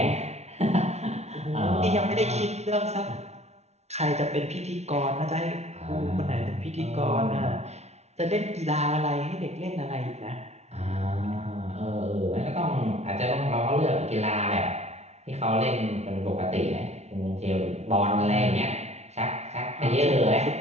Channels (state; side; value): late; left; 0.32 ms